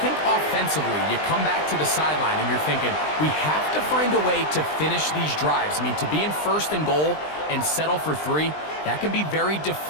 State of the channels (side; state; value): right; late; 20 ms